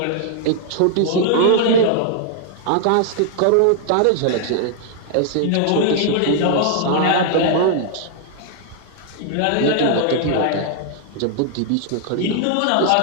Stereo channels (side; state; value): both; different; correlation 0.00